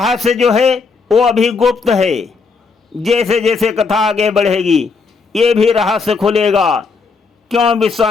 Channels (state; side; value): quieter; right; 4.7 dB